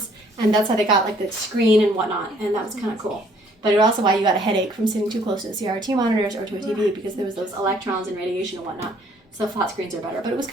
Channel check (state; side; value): normal; both; correlation 0.62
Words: and that's how they got like the screen and whatnot, and that was kind of cool. But it's also why you got a headache from sitting too close to the CRT monitors or to a TV, because there was those electrons and radiation and whatnot. So flat screens are better, but it was